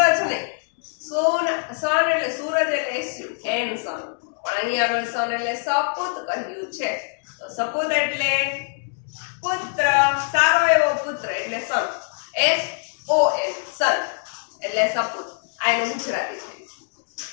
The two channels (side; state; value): right; silent; 63 dB below the other